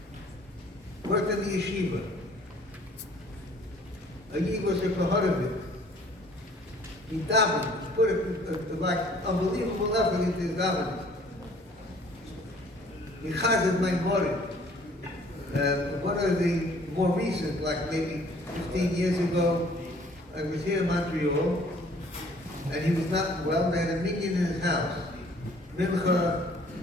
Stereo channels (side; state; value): both; normal; correlation 0.56